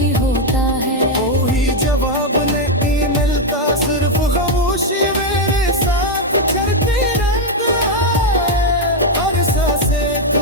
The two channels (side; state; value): both; normal; correlation 0.02